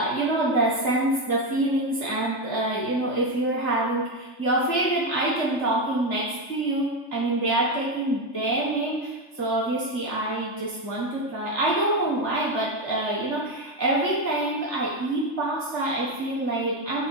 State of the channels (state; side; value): late; right; 3.3 ms